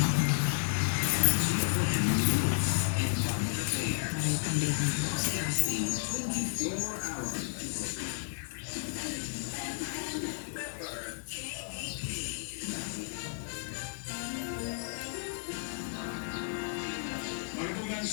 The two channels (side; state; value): right; silent; digital silence